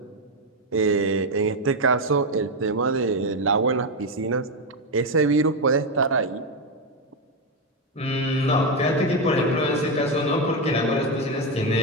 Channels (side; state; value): both; normal; correlation 0.07